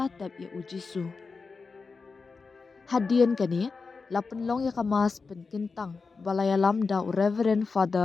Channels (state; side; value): quieter; right; 4.6 dB